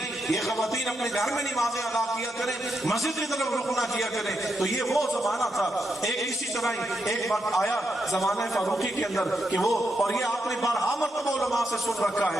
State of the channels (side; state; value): both; normal; correlation 0.83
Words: یہ خواتین اپنے گھر میں نمازیں ادا کیا کریں، مسجد کی طرف رخ نہ کیا کریں۔ تو یہ وہ زمانہ تھا۔ ایک اسی طرح ہی ایک وقت آیا زمانہ فاروقی کے اندر کہ وہ، اور یہ آپ نے بارہا مرتبہ علماء سے سن رکھا